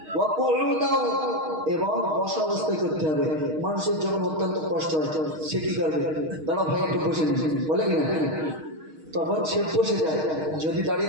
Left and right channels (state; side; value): late; left; 6.4 ms